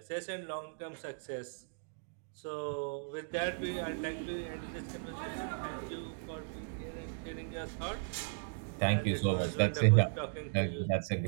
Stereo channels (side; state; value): left; silent; digital silence